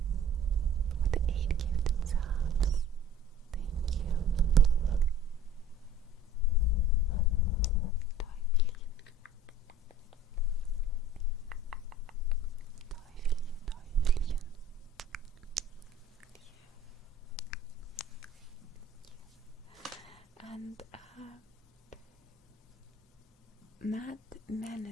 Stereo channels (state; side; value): normal; both; correlation 0.47